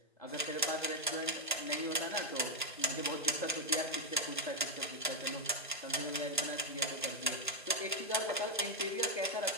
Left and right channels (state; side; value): normal; both; correlation 0.01